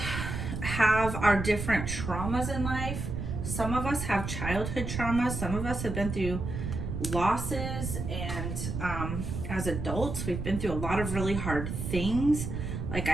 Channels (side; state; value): right; noise; rumble, 4 dB below the sound